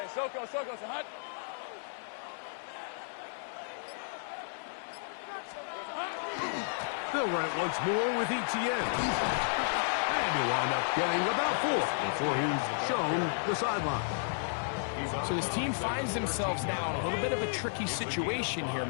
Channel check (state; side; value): silent; right; 56 dB below the other